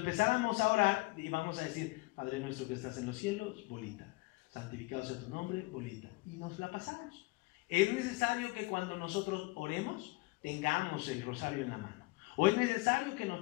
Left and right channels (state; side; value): quieter; right; 23.4 dB